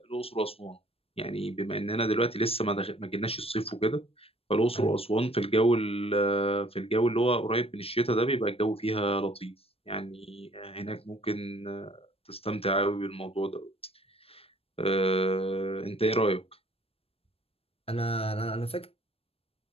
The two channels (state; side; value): late; right; 0.28 ms